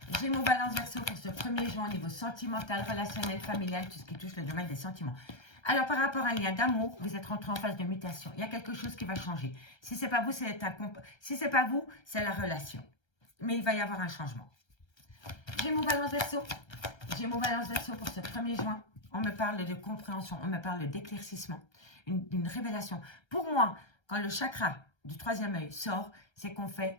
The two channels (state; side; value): late; right; 1.3 ms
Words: Gémeaux, Balance, Verseau pour ce 1er juin au niveau sentimental, relationnel, familial, tout ce qui touche le domaine des sentiments. Alors, par rapport à un lien d'amour, vous êtes rentré en phase de mutation. Il y a quelque chose qui va changer. Si ce n'est pas vous, c'est la relation. Mais il va y avoir un changement. Gémeaux, Balance, Verseau. Gémeaux, Balance, Verseau pour ce 1er juin. On me parle de compréhension, on me parle d'éclaircissement, une révélation. Pour moi, quand le chakra du 3e œil sort, c'est qu'on